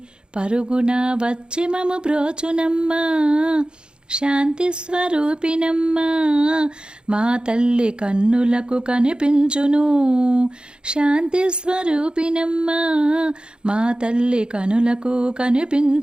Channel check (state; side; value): late; left; 0.050 ms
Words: పరుగున వచ్చి మము బ్రోచునమ్మా. శాంతి స్వరూపినమ్మా మా తల్లి కన్నులకు కనిపించును. శాంతి స్వరూపినమ్మా మా తల్లి కనులకు